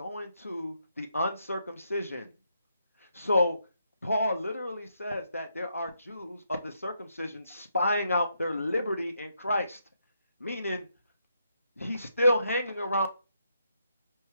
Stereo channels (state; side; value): inverted; both; correlation -0.78